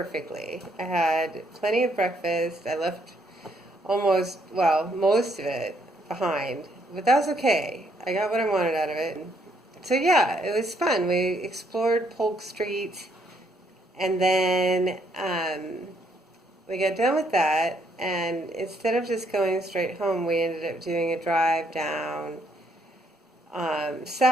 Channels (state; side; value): normal; both; correlation 0.71